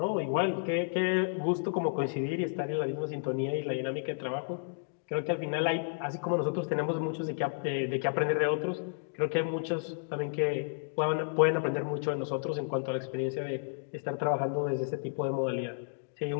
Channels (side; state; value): right; silent; digital silence